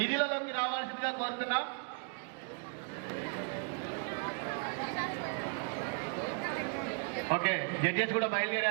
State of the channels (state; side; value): quieter; left; 38.7 dB